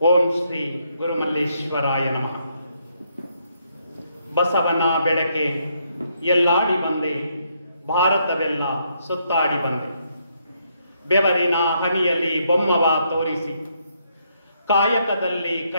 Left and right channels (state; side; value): inverted; both; correlation -0.75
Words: ಓಂ ಶ್ರೀ ಗುರುಮಲ್ಲೇಶ್ವರಾಯ ನಮಃ. ಬಸವನ ಬೆಳಕೆ ಎಲ್ಲಾಡಿ ಬಂದೆ, ಭಾರತವೆಲ್ಲ ಸುತ್ತಾಡಿ ಬಂದೆ. ಬೆವರಿನ ಹನಿಯಲ್ಲಿ ಬೊಮ್ಮವ ತೋರಿಸಿ, ಕಾಯಕದಲ್ಲಿ